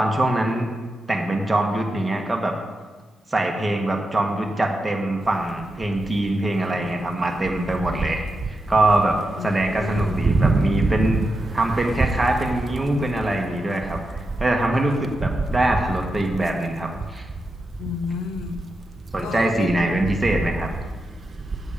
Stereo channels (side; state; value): both; normal; correlation 0.88